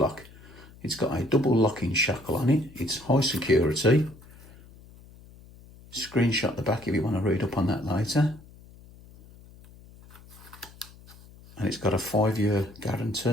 It's got a double locking shackle on it. It's high security. Screenshot the back if you want to read up on that later. And it's got a 5-year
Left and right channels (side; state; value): left; noise; hum, 22 dB below the sound